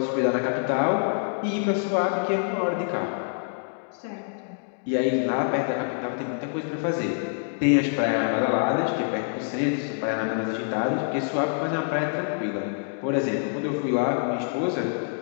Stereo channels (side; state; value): right; silent; digital silence